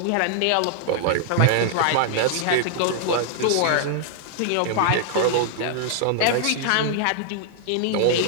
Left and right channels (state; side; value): different; both; correlation -0.01